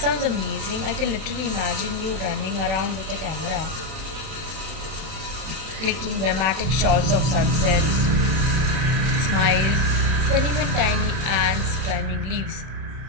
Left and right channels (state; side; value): late; left; 31 ms